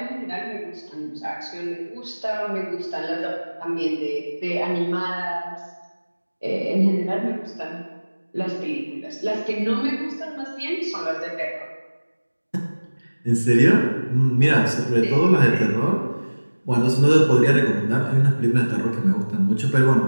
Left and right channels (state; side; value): inverted; both; correlation -1.00